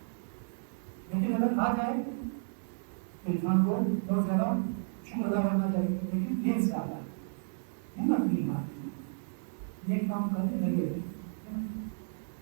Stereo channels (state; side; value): silent; left; digital silence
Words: لیکن اگر آ جائے تو انسان کو بہت زیادہ شکر ادا کرنا چاہیے، لیکن دیر سے آتا ہے، ہمت نہیں مارتی، نیک کام کرنے لگے